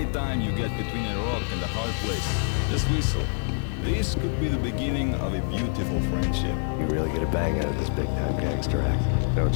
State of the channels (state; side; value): silent; right; digital silence